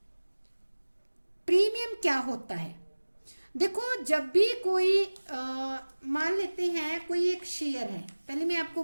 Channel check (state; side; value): inverted; both; correlation -1.00